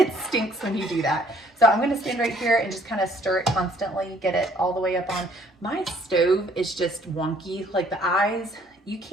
stinks when you do that. So I'm going to stand right here and just kind of stir it constantly, get it all the way up on. My stove is just wonky, like the eyes. You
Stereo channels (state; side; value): normal; both; correlation 0.61